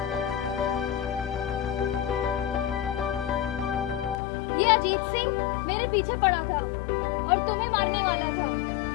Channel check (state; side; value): drops out; right; at 4.2 s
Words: ये अजीत सिंह मेरे पीछे पड़ा था और तुम्हें मारने वाला था,